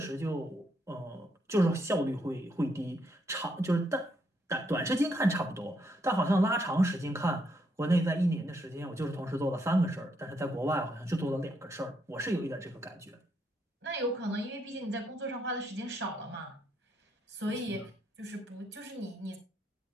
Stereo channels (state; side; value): normal; both; correlation 0.76